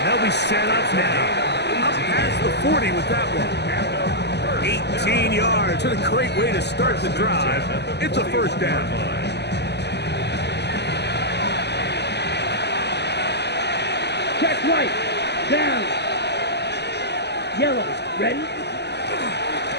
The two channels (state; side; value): late; right; 0.50 ms